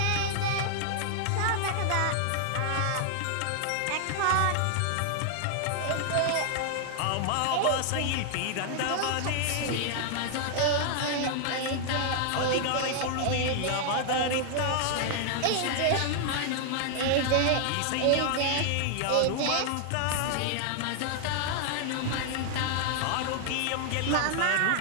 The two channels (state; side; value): different; both; correlation 0.00